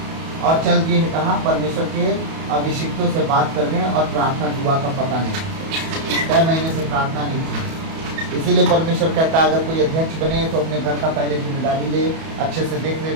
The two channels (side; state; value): left; late; 31 ms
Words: और चल दिए है कहा, परमेश्वर के अभिषिक्तों से बात करने और प्रार्थना दुआ का पता नहीं, कई महीने से प्रार्थना नहीं की। इसीलिए परमेश्वर कहता है अगर कोई अध्यक्ष बने तो अपने घर का पहले जिम्मेदारी ले, अच्छे से देख